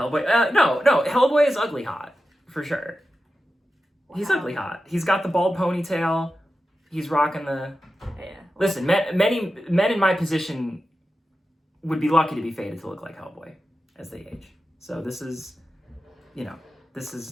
no, Hellboy is ugly hot, for sure. Wow. He's ugly hot. He's got the bald ponytail. He's rocking the... Yeah. Listen, many men in my position would be lucky to be fated to look like Hellboy as they age. So this is, you know, this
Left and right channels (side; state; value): both; normal; correlation 0.92